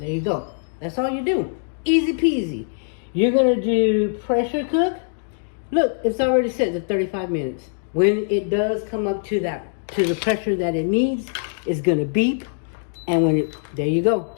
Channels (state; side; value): silent; right; digital silence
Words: you go. That's all you do. Easy peasy. You're going to do pressure cook. Look, it's already set to 35 minutes. When it does come up to the pressure that it needs, it's going to beep. And when it, there you go.